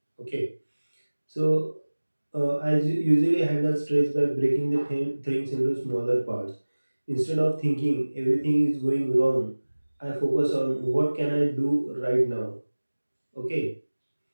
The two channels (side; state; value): both; inverted; correlation -1.00